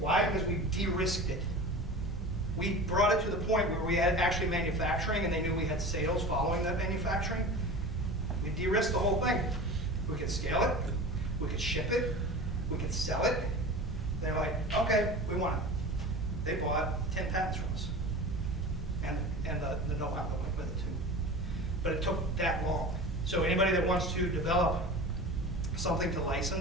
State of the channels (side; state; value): both; normal; correlation 0.34